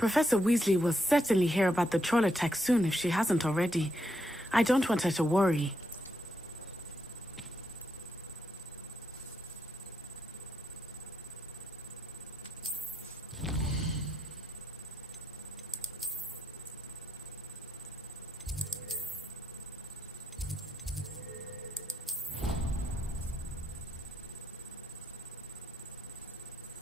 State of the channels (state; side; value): normal; both; correlation 0.79